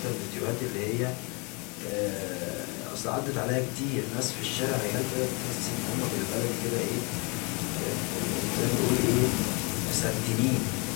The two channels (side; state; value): right; quieter; 30.9 dB